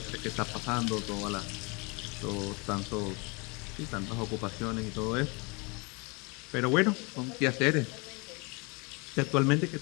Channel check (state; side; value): quieter; right; 29.7 dB